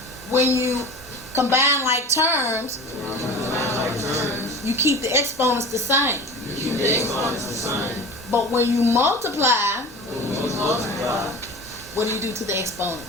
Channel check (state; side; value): normal; both; correlation 0.35